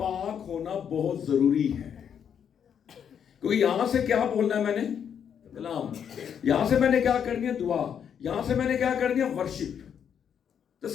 ہونا بہت ضروری ہے. کیونکہ یہاں سے کیا بولنا ہے میں نے؟ کلام. یہاں سے میں نے کیا کرنی ہے؟ دعا. یہاں سے میں نے کیا کرنی ہے؟ ورشپ. تو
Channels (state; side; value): quieter; right; 8.1 dB